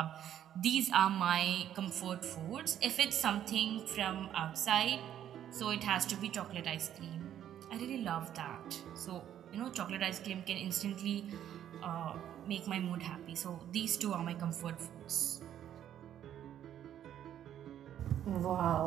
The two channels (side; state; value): left; quieter; 10.6 dB